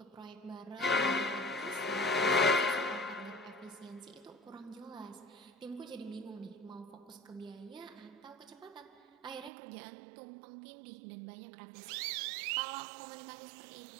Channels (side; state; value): left; drops out; at 9.5 s